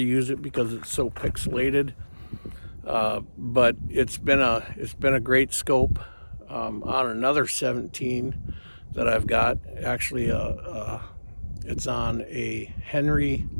it because it's so pixelated, but it's been a great scope. On another 17 that I've got, actually, it's on a Henry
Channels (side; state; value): both; inverted; correlation -1.00